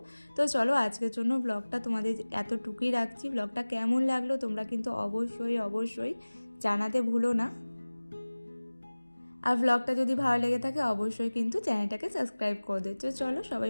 তো চলো, আজকের জন্য ব্লগটা তোমাদের এতটুকুই রাখছি। ব্লগটা কেমন লাগলো তোমরা কিন্তু অবশ্যই অবশ্যই জানাতে ভুলো না। আর ব্লগটা যদি ভালো লেগে থাকে অবশ্যই কিন্তু চ্যানেলটাকে সাবস্ক্রাইব করে দিচ্ছ। চলো, সবাই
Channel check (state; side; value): inverted; both; correlation -1.00